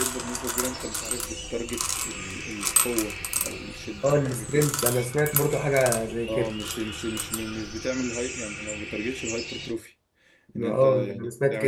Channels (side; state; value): both; identical; correlation 1.00